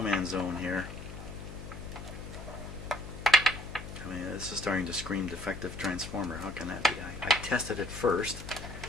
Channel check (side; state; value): left; noise; hum, 11 dB below the sound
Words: zone here. I mean, this is starting to scream defective transformer. How can that be? I tested it first,